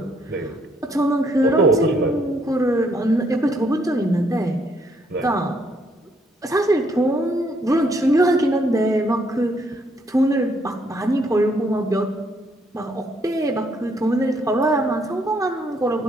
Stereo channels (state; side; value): normal; both; correlation 0.70